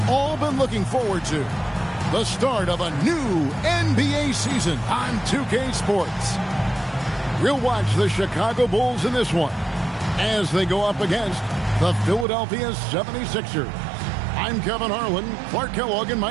all been looking forward to. The start of a new NBA season on 2K Sports. We'll watch the Chicago Bulls in this one as they go up against the Philadelphia 76ers. I'm Kevin Harlan. Clark Kellogg and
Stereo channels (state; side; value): drops out; left; at 12.2 s